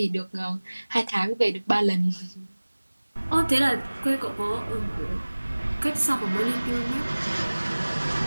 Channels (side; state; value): both; inverted; correlation -1.00